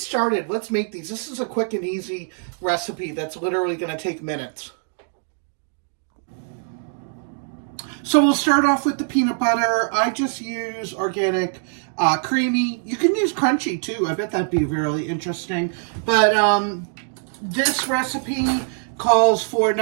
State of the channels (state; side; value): silent; left; 60 dB below the other